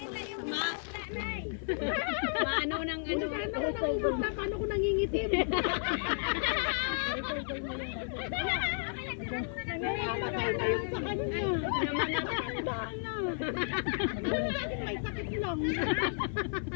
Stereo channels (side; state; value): right; silent; 56 dB below the other